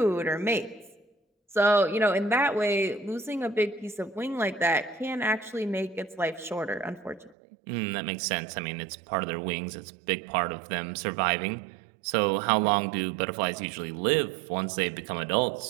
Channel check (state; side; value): drops out; left; at 7.4 s